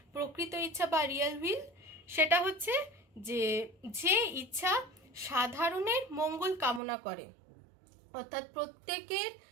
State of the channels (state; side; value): drops out; left; at 6.8 s